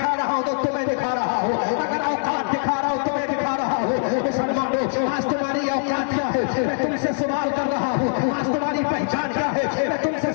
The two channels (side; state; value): right; silent; digital silence